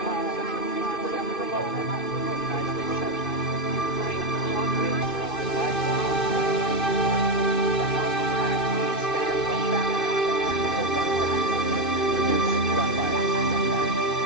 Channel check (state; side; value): late; right; 2.5 ms